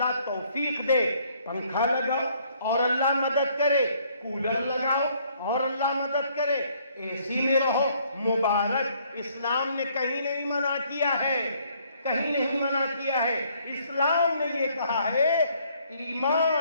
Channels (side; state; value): both; inverted; correlation -0.65